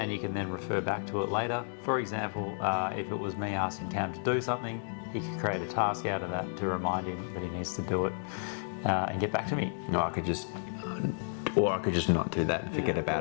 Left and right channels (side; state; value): right; silent; digital silence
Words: and you can then refer back to it later. For example, if it was me asking Cam to do something, he could create a task out of that to remind him that he needs to do it and get back to me. No, I could just not do that and forget